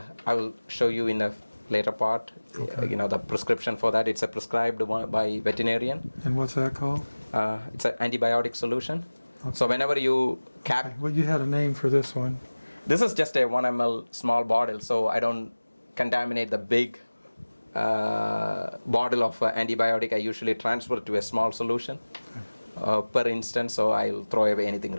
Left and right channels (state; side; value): inverted; both; correlation -1.00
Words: will show you in a later part, the prescription for that. It's a prescribed one by veterinarian. And what's that called? It's an antibiotic solution. Okay. So whenever you cap... Okay. Well, you had a name for this one. This is just a 1 ml small bottle, so I don't contaminate the big bottle of antibiotic. I usually transfer to a small solution per instance, so I'll throw away anything